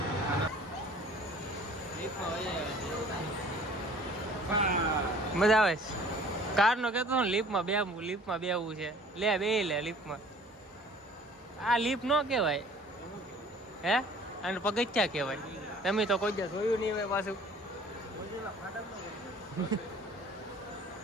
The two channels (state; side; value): normal; both; correlation 0.50